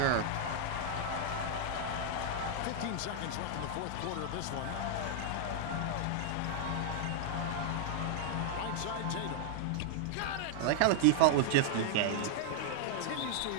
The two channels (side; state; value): both; different; correlation -0.01